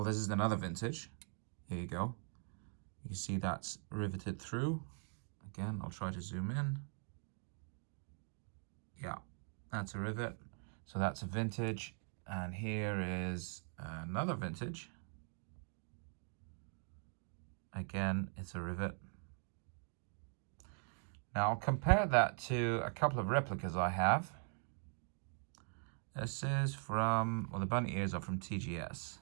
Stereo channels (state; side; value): silent; left; 50 dB below the other